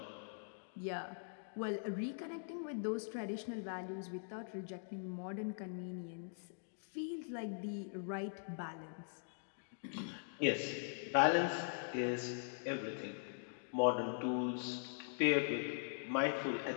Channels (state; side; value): silent; right; digital silence